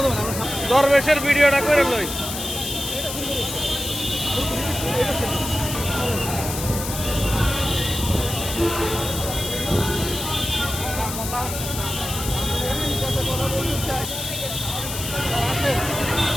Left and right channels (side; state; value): left; noise; hiss, 6 dB below the sound